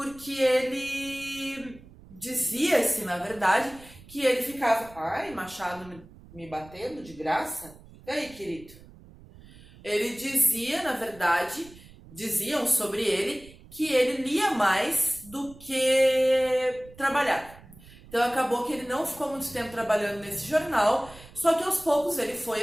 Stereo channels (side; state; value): right; noise; rumble, 21 dB below the sound